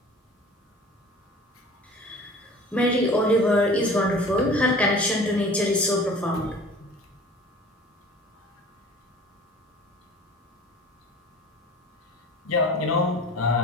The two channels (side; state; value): both; normal; correlation 0.43